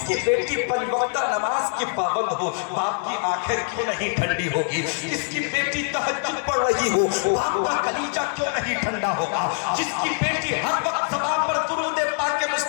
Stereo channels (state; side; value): silent; right; 62 dB below the other